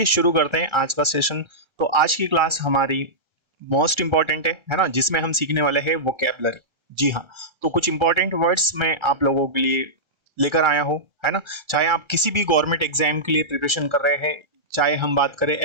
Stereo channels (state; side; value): late; left; 1.3 ms